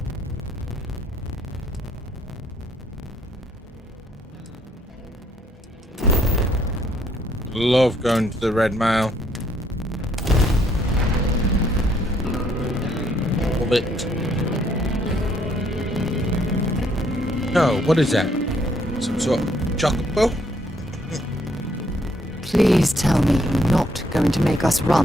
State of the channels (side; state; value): both; normal; correlation 0.68